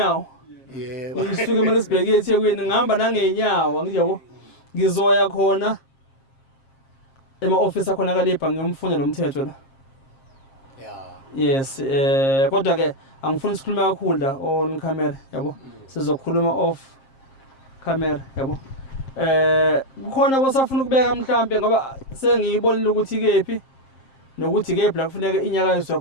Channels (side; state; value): right; late; 7.5 ms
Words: Yebo. Ngisuke eMaritzburg eThekwini ngihamba nangenyawo ngiyabo. Ngizoya khona ema-office akhona kalepha ngiyomfunda lo mthetho la. Yes, kodwa ke angifuni sikhulume kakhulu la on camera yabo. Sizokhuluma off camera yabo. Kukhona bosafuna ukubeka mhlambe ngoba sengiyibonile ukuthi kephi nokuthi kephi la kufuneka inyakayiswe